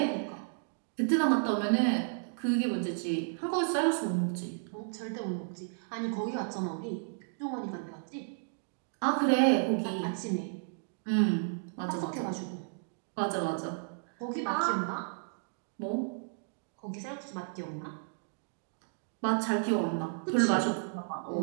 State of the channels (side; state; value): left; silent; digital silence